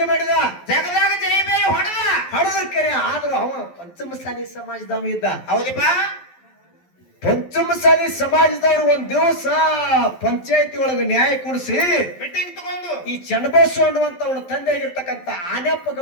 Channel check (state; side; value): late; right; 11 ms